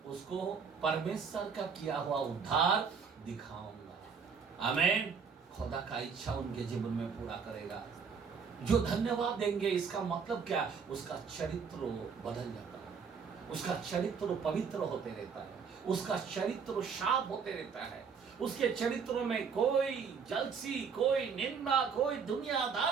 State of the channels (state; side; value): quieter; left; 6.0 dB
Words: उसको परमेश्वर का किया हुआ उद्धार दिखाऊंगा। आमीन। खुदा का इच्छा उनके जीवन में पूरा करेगा। जो धन्यवाद देंगे, इसका मतलब क्या? उसका चरित्र बदल जाता है, उसका चरित्र पवित्र होते रहता है, उसका चरित्र साफ होते रहता है, उसके चरित्र में कोई जलसी, कोई निंदा, कोई